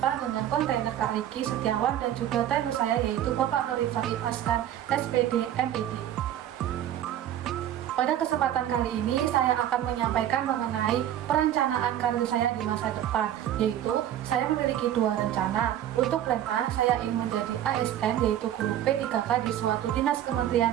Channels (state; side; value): quieter; left; 11.5 dB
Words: dengan kontainer Kak Riki Setiawan dan juga trainer saya yaitu Bapak Nur Rifai Askan, SPD, MED. Pada kesempatan kali ini saya akan menyampaikan mengenai perencanaan karir saya di masa depan, yaitu saya memiliki dua rencana. Untuk plan A, saya ingin menjadi ASN yaitu guru P3K di suatu dinas Kementerian